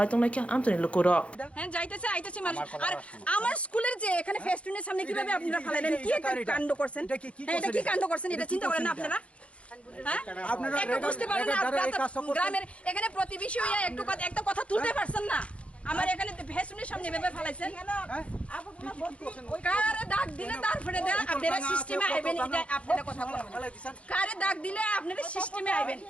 tonglai amtani lukuro হ্যাঁ যাইতেছে আইতেছে মানুষ আর আমার স্কুলের যে এখানে ফেস্টুনের সামনে কিভাবে আপনারা ফালাইলেন কি কাণ্ড করছেন এটা কি কাণ্ড করছেন এটা চিন্তা করেন না আপনারা হ্যাঁ আপনারা একটু বুঝতে পারেন না গ্রামের এখানে প্রতিবেশী হইয়া একটা কথা তুলতে পারছেন না আমার এখানে ফেস্টুনের সামনে এভাবে ফালাইছেন কারে দাগ দিলে তারপরে দেন আপনারা সিস্টেমে আইবেন এটা আপনারা কথা বলেন কারে দাগ দিলে আপনারা সিস্টেমে আইবেন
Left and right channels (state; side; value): late; right; 0.062 ms